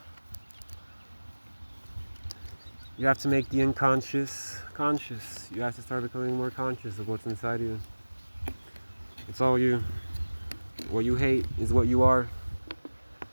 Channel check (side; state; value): both; inverted; correlation -1.00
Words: You have to make the unconscious conscious. You have to start becoming more conscious of what's inside you. It's all you. What you hate is what you are.